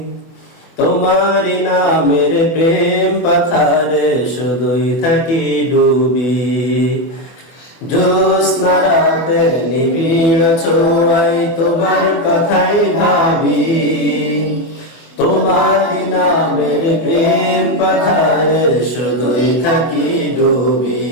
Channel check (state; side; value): late; right; 24 ms